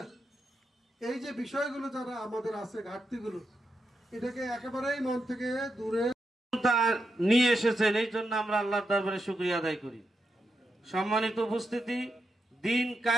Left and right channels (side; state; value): both; normal; correlation 0.85